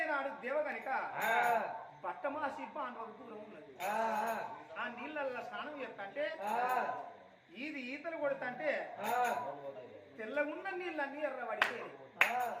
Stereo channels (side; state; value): both; identical; correlation 1.00